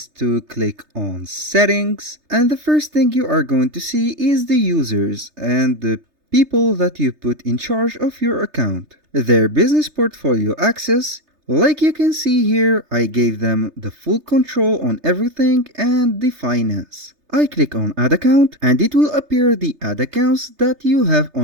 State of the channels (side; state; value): left; late; 3.3 ms